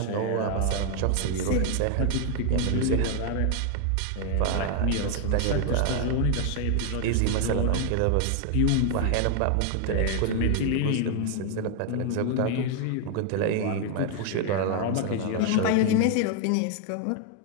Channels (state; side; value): different; both; correlation 0.00